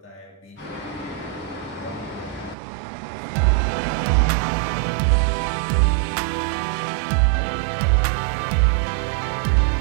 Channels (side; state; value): left; drops out; at 2.6 s